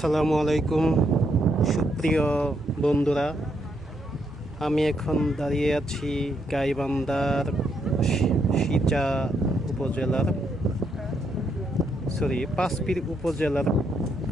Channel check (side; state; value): both; normal; correlation 0.76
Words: আলাইকুম সুপ্রিয় বন্ধুরা, আমি এখন দাঁড়িয়ে আছি গাইবান্ধার সিচা উপজেলার পাঁচপীর উপজেলার